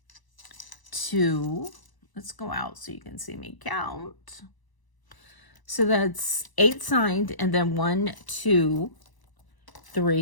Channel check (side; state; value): right; late; 1.0 ms